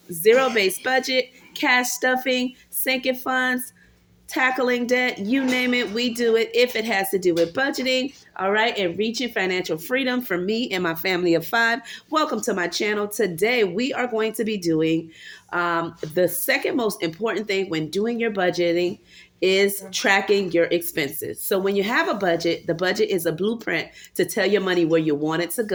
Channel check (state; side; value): identical; both; correlation 1.00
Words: zero-based budget, cash stuffing, sinking funds, tackling debt, you name it, we do it if it has to do with budgeting, all right, and reaching financial freedom for me and my family of five. Welcome to my channel. Today, we are going to be doing the second most important thing when doing your budgeting is tracking your expenses. So when you have a budget, the budget is a blueprint to tell your money where you want it to